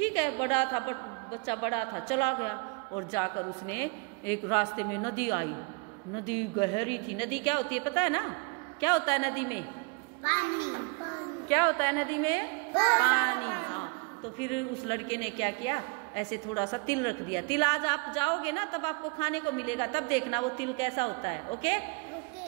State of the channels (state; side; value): quieter; left; 31.2 dB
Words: है। बच्चा बड़ा था, चला गया, और जाकर उसने एक रास्ते में नदी आई। नदी गहरी थी। नदी क्या होती है पता है ना? क्या होता है नदी में? पानी। क्या होता है नदी में? पानी। हाँ। तो फिर उस लड़के ने क्या किया, ऐसे थोड़ा सा तिल रख दिया। तिल आज आप जाओगे ना तब आपको खाने को मिलेगा, तब देखना वो तिल कैसा होता है। ओके।